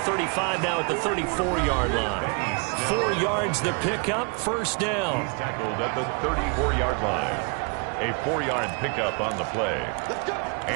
now at the 34-yard line. 4 yards the pickup, first down. He's tackled at the 34-yard line. A 4-yard pickup on the play.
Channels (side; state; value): left; quieter; 35.5 dB